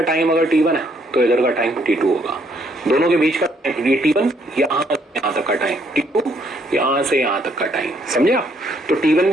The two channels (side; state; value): both; normal; correlation 0.69